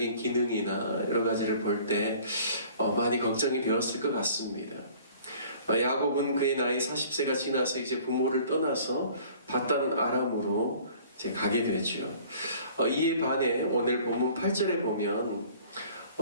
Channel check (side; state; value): both; inverted; correlation -0.51